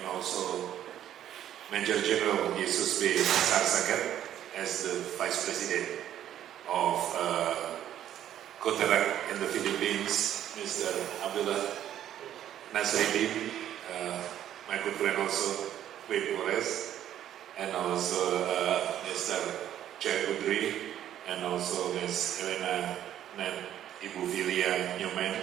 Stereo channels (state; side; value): quieter; left; 11.2 dB